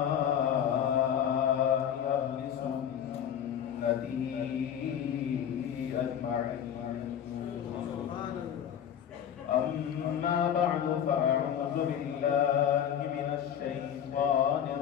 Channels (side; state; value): right; quieter; 9.3 dB